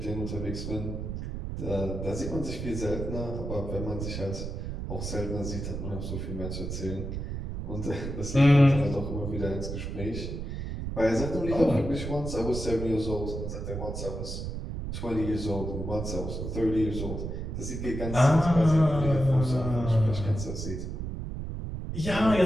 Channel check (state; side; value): noise; right; rumble, 5 dB below the sound